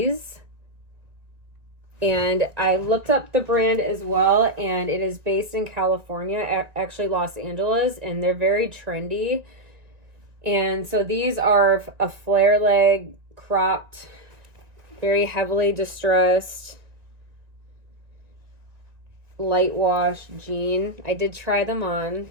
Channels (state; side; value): late; left; 1.9 ms